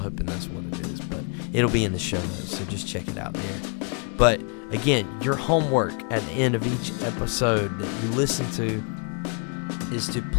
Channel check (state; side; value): quieter; right; 39.4 dB